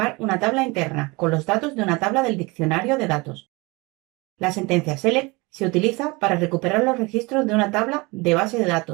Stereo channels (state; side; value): quieter; left; 25.2 dB